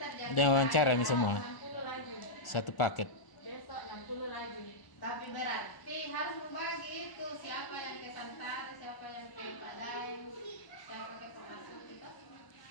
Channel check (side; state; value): right; late; 1.4 ms